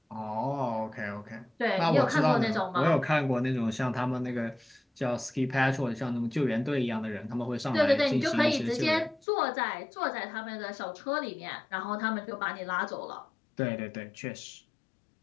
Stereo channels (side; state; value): right; drops out; at 9.2 s